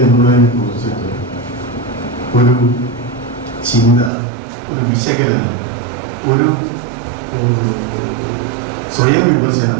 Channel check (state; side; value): drops out; left; at 4.1 s